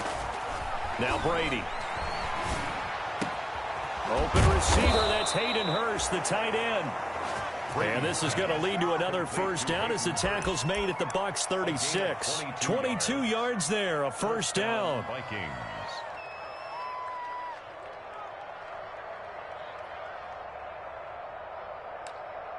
Now Brady. Open receiver, that's Hayden Hurst, the tight end. And this is going to lead to another first down as the tackle's made at the Bucs 36. 22 yards there, a first down.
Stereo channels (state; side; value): identical; both; correlation 1.00